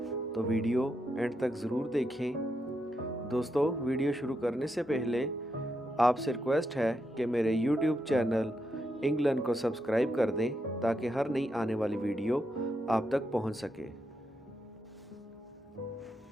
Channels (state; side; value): normal; both; correlation 0.83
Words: तो वीडियो एंड तक ज़रूर देखें। दोस्तों, वीडियो शुरू करने से पहले आपसे रिक्वेस्ट है कि मेरे यूट्यूब चैनल इंग्लैंड को सब्सक्राइब कर दें ताकि हर नई आने वाली वीडियो आप तक पहुंच सके।